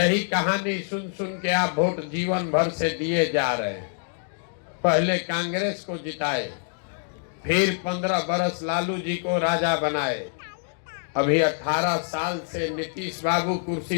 कहानी सुन सुन के आप वोट जीवन भर से दिए जा रहे हैं। पहले कांग्रेस को जिताए, फिर 15 बरस लालू जी को राजा बनाए, अभी 18 साल से नीतीश बाबू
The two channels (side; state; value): right; silent; digital silence